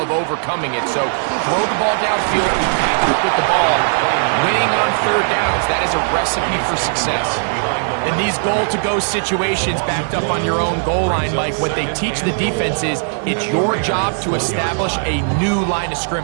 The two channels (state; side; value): silent; left; 68 dB below the other